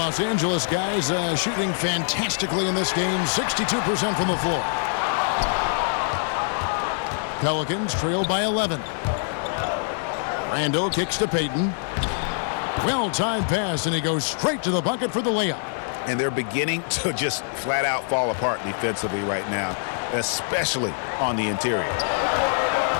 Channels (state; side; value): silent; right; 62 dB below the other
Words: Angeles guys shooting fantastically in this game. 62% from the floor. Pelicans trail by 11. Randall kicks to Payton. Well-timed pass, and he goes straight to the bucket for the layup. And they're beginning to just flat out fall apart defensively right now, especially on the interior.